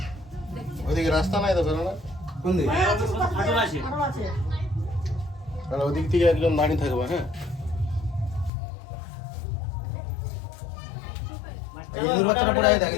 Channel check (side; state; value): right; drops out; at 8.5 s